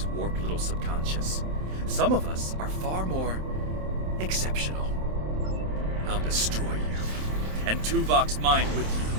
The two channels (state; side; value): late; left; 27 ms